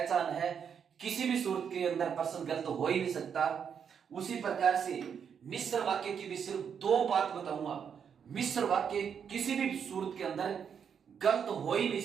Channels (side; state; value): left; quieter; 7.4 dB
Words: है, किसी भी सूरत के अंदर प्रश्न गलत हो ही नहीं सकता। उसी प्रकार से मिश्र वाक्य की भी सिर्फ 2 बात बताऊंगा। मिश्र वाक्य किसी भी सूरत के अंदर गलत हो ही नहीं